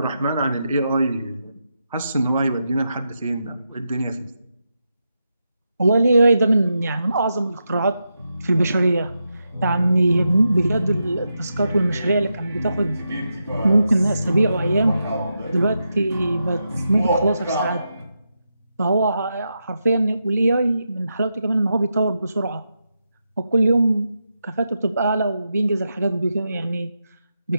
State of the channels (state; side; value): inverted; both; correlation -0.86